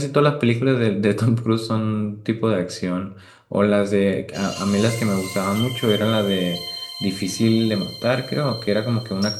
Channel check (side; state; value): both; identical; correlation 1.00